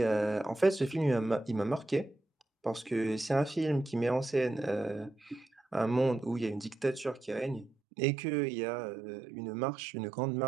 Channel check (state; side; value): drops out; left; at 7.8 s